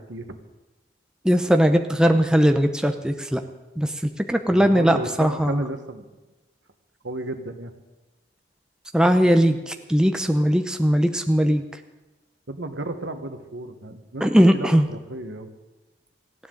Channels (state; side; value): normal; both; correlation 0.93